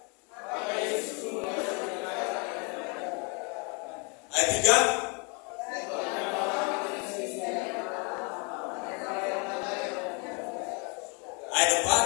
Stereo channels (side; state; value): right; quieter; 33.5 dB